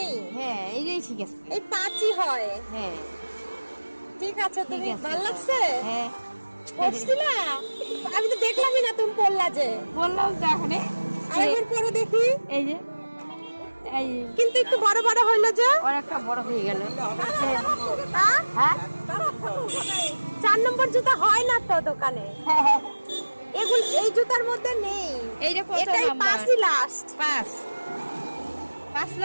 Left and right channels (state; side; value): inverted; both; correlation -1.00